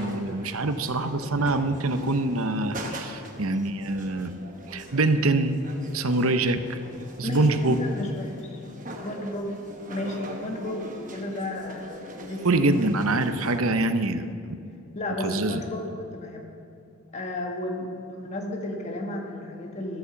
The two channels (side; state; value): both; normal; correlation 0.42